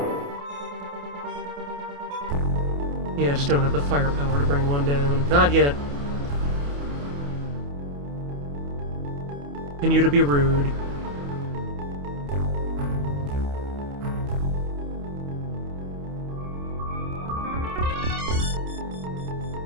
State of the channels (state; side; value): late; left; 28 ms